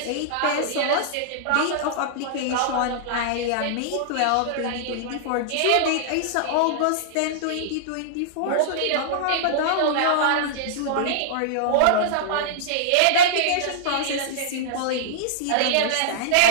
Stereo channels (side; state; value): both; different; correlation -0.02